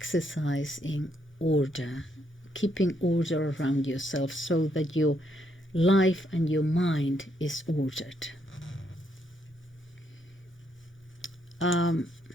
in order, keeping order around yourself so that your life and your mind is ordered.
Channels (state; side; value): normal; both; correlation 0.75